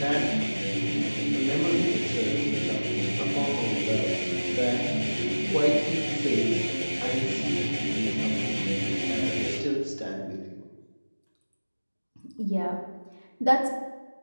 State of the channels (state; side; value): inverted; both; correlation -1.00